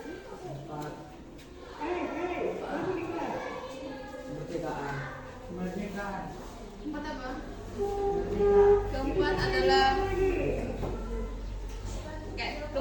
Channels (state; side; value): identical; both; correlation 1.00